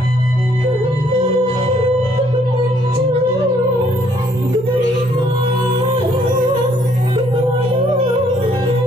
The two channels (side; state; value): both; normal; correlation 0.66